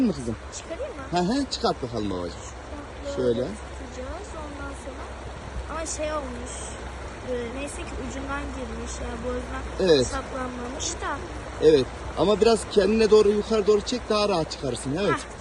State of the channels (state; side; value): identical; both; correlation 1.00